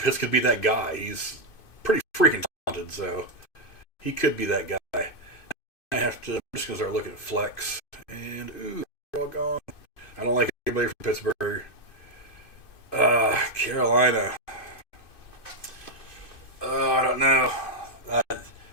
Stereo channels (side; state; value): right; late; 2.6 ms